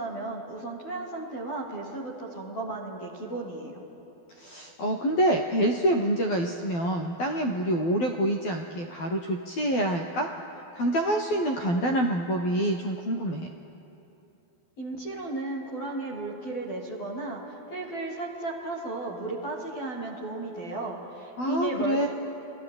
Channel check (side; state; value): right; late; 12 ms